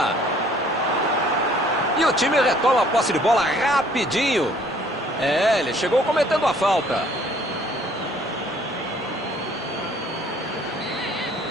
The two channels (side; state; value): both; normal; correlation 0.58